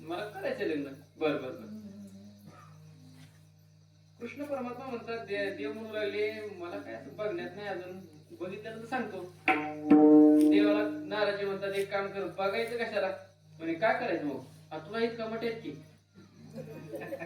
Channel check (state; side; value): identical; both; correlation 1.00